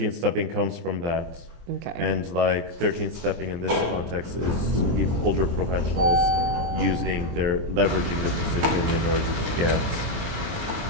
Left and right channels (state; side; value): late; left; 23 ms